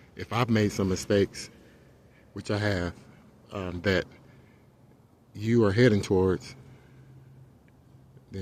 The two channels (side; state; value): both; identical; correlation 1.00